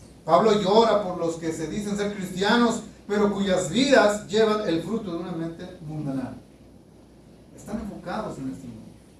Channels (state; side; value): identical; both; correlation 1.00